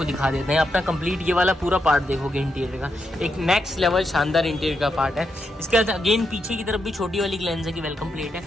दिखा देते हैं। अपना कंप्लीट ये वाला पूरा पार्ट देखोगे इंटीरियर का, एक नेक्स्ट लेवल शानदार इंटीरियर का पार्ट है। इसके बाद अगेन पीछे की तरफ भी छोटी वाली ग्लेंजा की वेलकम प्लेट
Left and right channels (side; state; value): both; normal; correlation 0.83